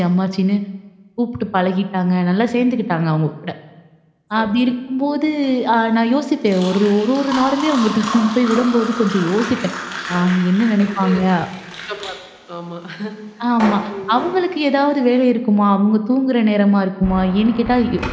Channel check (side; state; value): both; identical; correlation 1.00